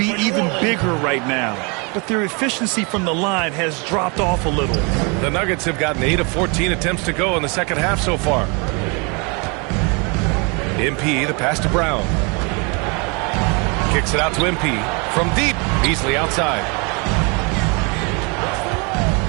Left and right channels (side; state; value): left; quieter; 31.7 dB